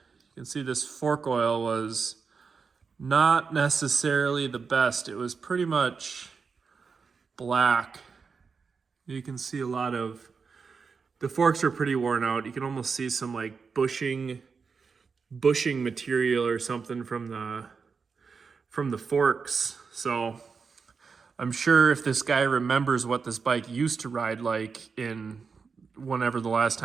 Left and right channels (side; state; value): left; quieter; 5.3 dB